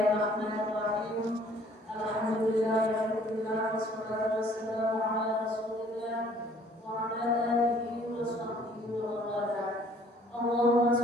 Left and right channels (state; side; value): normal; both; correlation 0.57